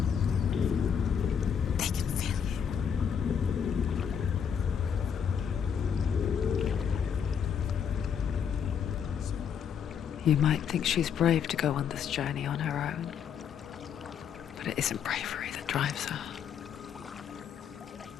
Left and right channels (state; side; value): quieter; right; 7.6 dB